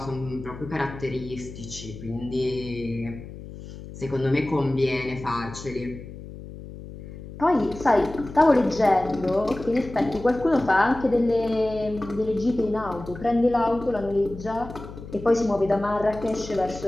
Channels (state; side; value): noise; left; hum, 13 dB below the sound